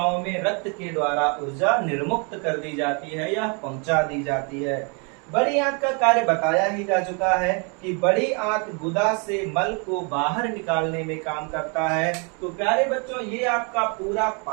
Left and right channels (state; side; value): quieter; left; 35.7 dB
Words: में रक्त के द्वारा ऊर्जा निर्मुक्त कर दी जाती है या पहुंचा दी जाती है। बड़ी आंत का कार्य बताया ही जा चुका है कि बड़ी आंत गुदा से मल को बाहर निकालने में काम करता है। तो प्यारे बच्चों, ये आपका पूरा